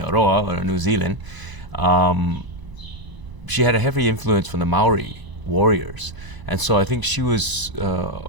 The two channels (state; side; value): late; left; 1.0 ms